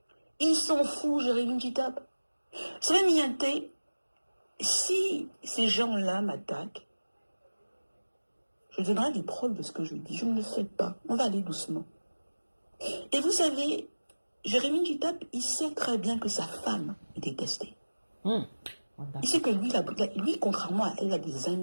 Ils s'en foutent, Jérémy Kitap. C'est même Mianté, si ces gens-là m'attaquent, je donnerai des preuves de ce que je dis. Je ne le fais pas. On va aller doucement. Et vous savez, Jérémy Kitap, il sait très bien que sa femme est détestée. Il sait que lui, contrairement à elle, a des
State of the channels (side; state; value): both; inverted; correlation -1.00